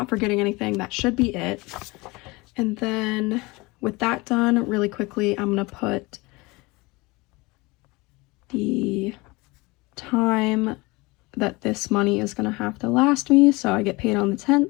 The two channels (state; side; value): quieter; right; 23.9 dB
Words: forgetting anything. That should be it. And then with that done, really quickly, I'm going to put the time that this money is going to have to last me. So I get paid on the 10th.